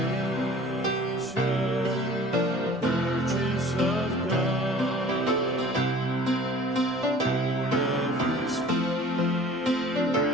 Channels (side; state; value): both; normal; correlation 0.47